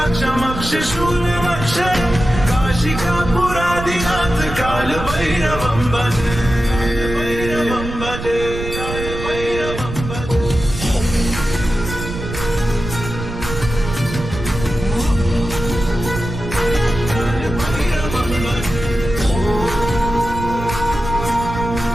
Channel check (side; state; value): right; noise; rumble, 8 dB below the sound